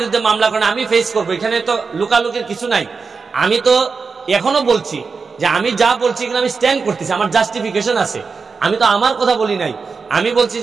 মামলা করেন, আমি ফেস করবো। এখানে তো লুকালুকির কিছু নাই। আমি তো এখনো বলছি যে আমি যা বলছি এগুলো আমি স্ট্যান্ড করতেছি, আমার জাস্টিফিকেশন আছে। আমি তো আমার কথা বলি নাই। আমি বলছি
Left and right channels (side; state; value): left; quieter; 4.9 dB